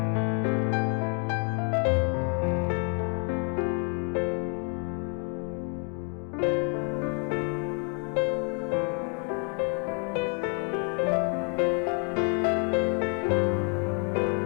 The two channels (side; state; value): right; quieter; 40.0 dB